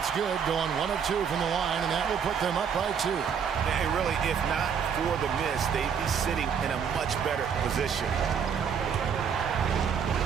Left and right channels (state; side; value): quieter; left; 7.2 dB